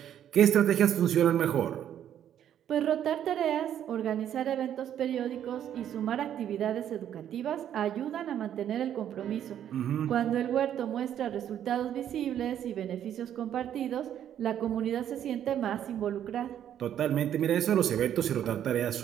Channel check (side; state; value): left; quieter; 10.2 dB